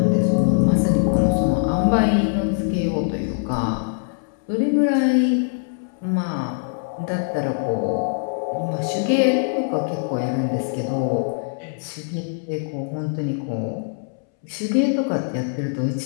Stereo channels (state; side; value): silent; right; 64 dB below the other